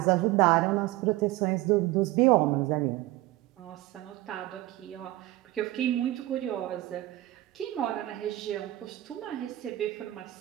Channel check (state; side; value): quieter; left; 17.0 dB